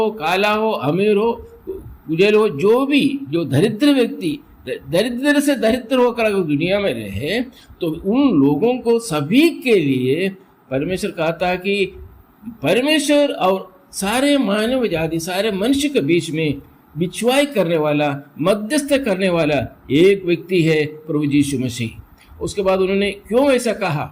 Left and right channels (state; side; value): identical; both; correlation 1.00